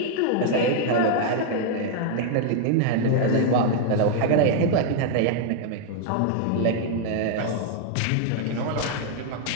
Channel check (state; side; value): different; both; correlation 0.00